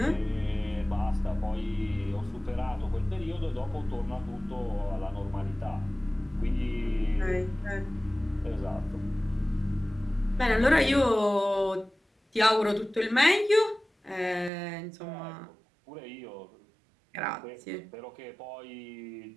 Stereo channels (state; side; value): drops out; left; at 14.5 s